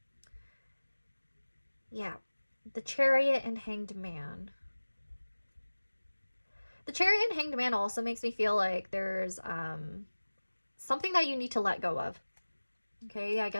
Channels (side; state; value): both; inverted; correlation -1.00